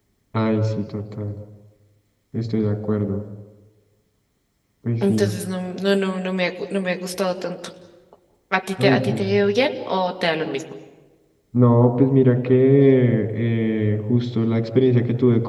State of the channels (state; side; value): identical; both; correlation 1.00